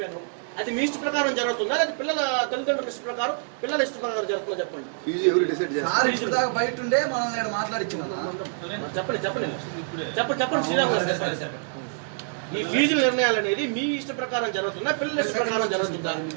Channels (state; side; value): silent; left; 61 dB below the other